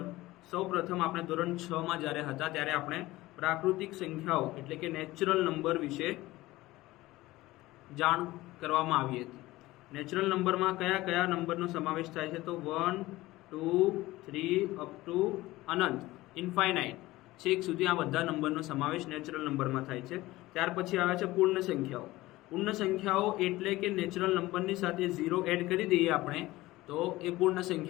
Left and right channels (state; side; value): quieter; right; 18.3 dB